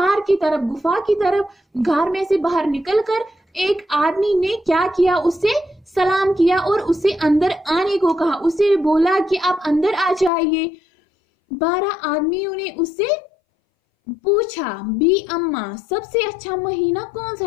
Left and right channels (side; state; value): right; drops out; at 10.3 s